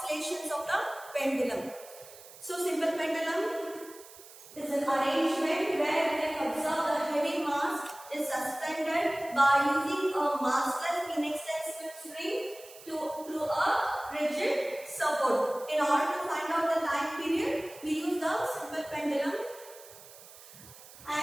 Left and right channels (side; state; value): right; noise; hiss, 19 dB below the sound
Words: of the pendulum. So simple pendulum is an arrangement where we can observe the heavy mass is suspended by using a massless inextensible spring to a rigid support. In order to find out the time period, we use the simple pendulum,